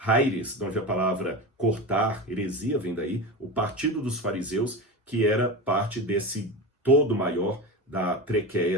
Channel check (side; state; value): both; normal; correlation 0.24